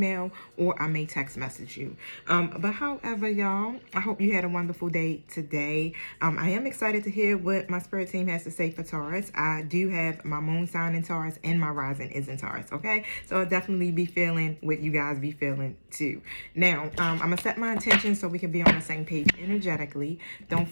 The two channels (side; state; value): both; inverted; correlation -1.00